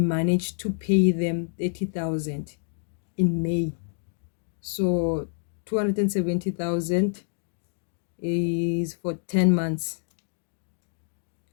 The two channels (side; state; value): right; silent; digital silence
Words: to pay them 30,000 in May. So 270,000 is for 10 months.